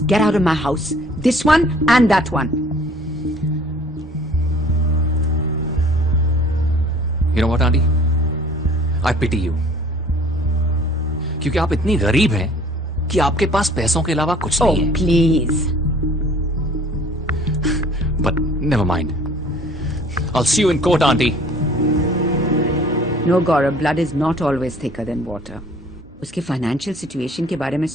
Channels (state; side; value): normal; both; correlation 0.52